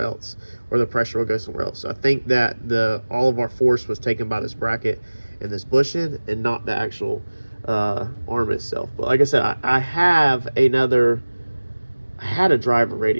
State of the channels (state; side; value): inverted; both; correlation -1.00